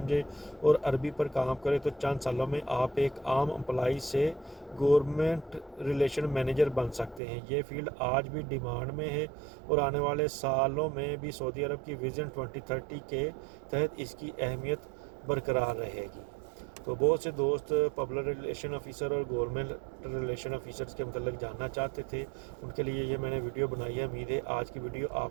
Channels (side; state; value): left; drops out; at 7.2 s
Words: اور عربی پر کام کریں تو چند سالوں میں آپ ایک عام امپلائی سے گورنمنٹ ریلیشن مینیجر بن سکتے ہیں. یہ فیلڈ آج بھی ڈیمانڈ میں ہے اور آنے والے سالوں میں بھی سعودی عرب کی ویژن 2030 کے تحت اس کی اہمیت برقرار رہے گی. تو بہت سے دوست پبلک ریلیشن آفیسر اور گورنمنٹ ریلیشن آفیسرز کے متعلق جاننا چاہتے تھے، ان کے لیے یہ میں نے ویڈیو بنائی ہے۔ امید ہے آج کی ویڈیو آپ